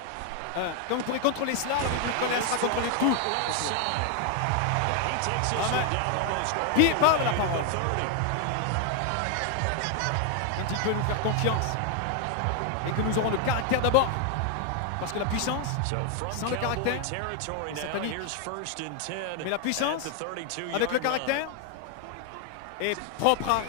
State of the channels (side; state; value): both; different; correlation 0.00